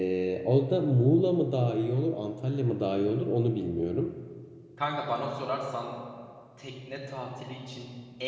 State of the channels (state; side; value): identical; both; correlation 1.00